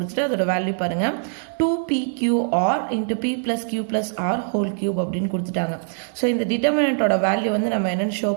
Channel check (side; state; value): left; silent; digital silence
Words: அதோட value பாருங்க 2PQR into P plus Q plus R whole cube அப்படின்னு கொடுத்துட்டாங்க. So இந்த determinant ஓட value வந்து நம்ம என்னன்னு ஷோ